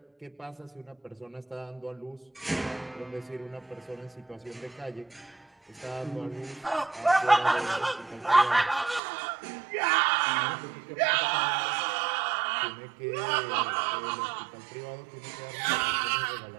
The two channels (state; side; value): drops out; left; at 9.0 s